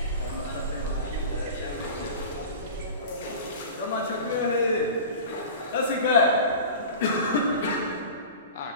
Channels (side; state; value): both; inverted; correlation -0.35